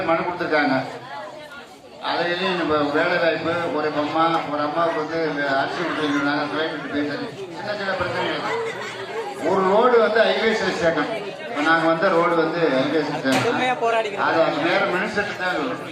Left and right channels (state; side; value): identical; both; correlation 1.00